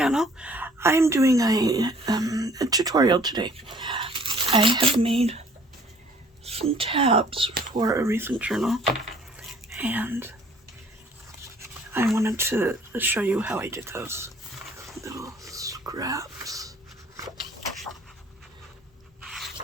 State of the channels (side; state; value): both; normal; correlation 0.56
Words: I am doing a tutorial today. I have made some tabs for a recent journal, and I wanted to show you how I did those little scraps.